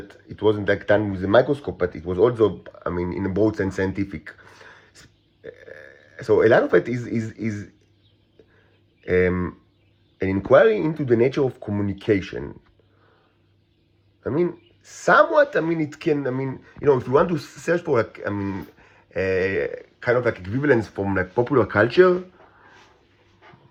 it wasn't like done with a microscope, but it was also, in a broad sense, scientific. So a lot of it is an inquiry into the nature of communication. Somewhat, it can, if you want to search for, like, kind of like equivalence from like popular culture,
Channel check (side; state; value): both; identical; correlation 1.00